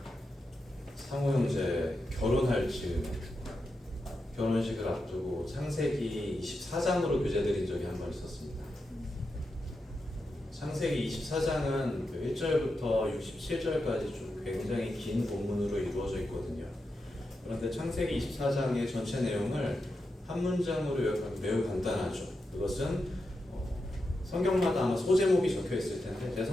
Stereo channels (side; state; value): both; normal; correlation 0.88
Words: 상호 형제 결혼할 즈음에 결혼식을 앞두고 창세기 24장으로 교재 드린 적이 한 번 있었습니다. 창세기 24장은 1절부터 67절까지 좀 굉장히 긴 본문으로 이루어져 있거든요. 그런데 창세기 24장의 전체 내용을 한 문장으로 요약하면 매우 간단하죠. 그것은 성경마다 아마 소제목이 적혀 있을 텐데 제